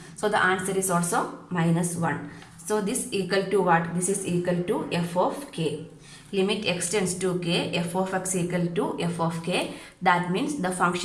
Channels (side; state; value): both; identical; correlation 1.00